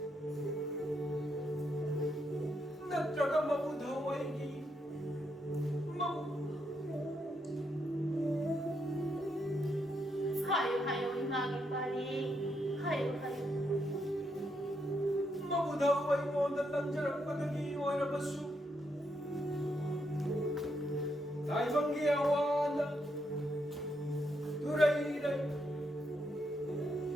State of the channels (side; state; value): both; normal; correlation 0.79